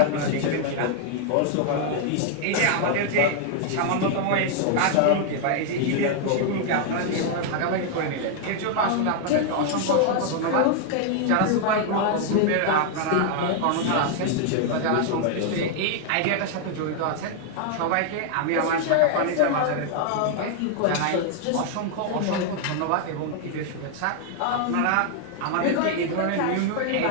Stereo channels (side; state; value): both; different; correlation 0.00